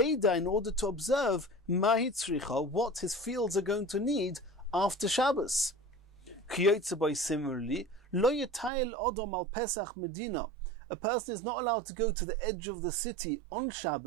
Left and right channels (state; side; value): drops out; left; at 8.7 s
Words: in order to observe Mahi Tzricha, what his fields are going to need after Shabbos. Similarly, Lo Yatayil Odom al Pesach Medina. A person is not allowed to go to the edge of the city on